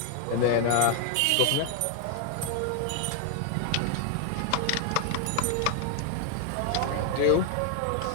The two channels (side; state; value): both; different; correlation 0.00